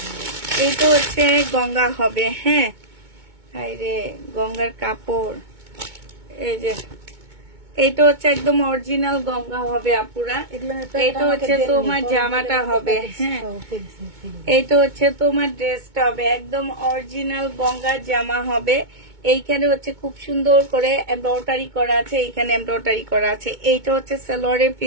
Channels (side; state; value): left; late; 2.2 ms